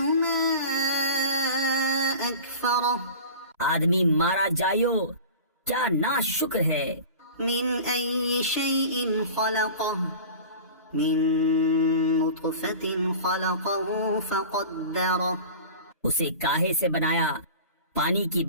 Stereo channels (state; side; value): inverted; both; correlation -0.37